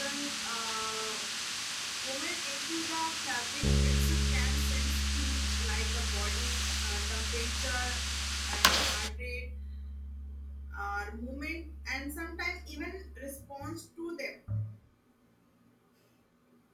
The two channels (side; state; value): both; identical; correlation 1.00